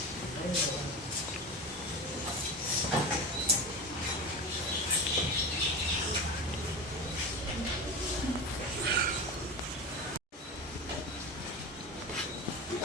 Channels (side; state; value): both; normal; correlation 0.26